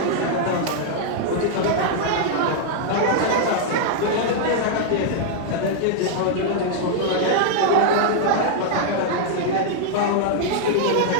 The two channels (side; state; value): both; different; correlation -0.01